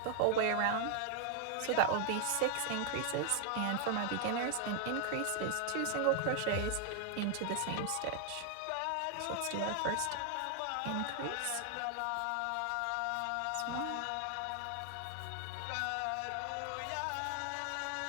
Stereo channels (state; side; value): different; both; correlation 0.00